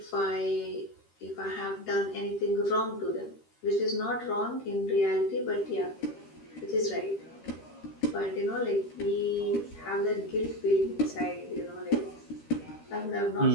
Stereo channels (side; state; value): right; late; 13 ms